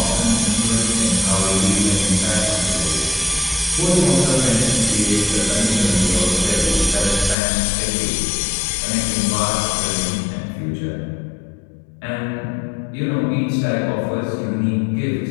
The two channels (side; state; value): right; drops out; at 7.4 s